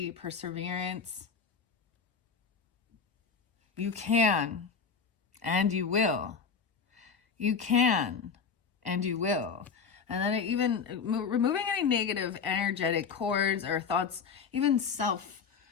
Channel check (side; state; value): right; quieter; 5.8 dB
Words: perseverance. You can, and you will. You can, and you will. And then even removing any negative energetic cords or thoughts, even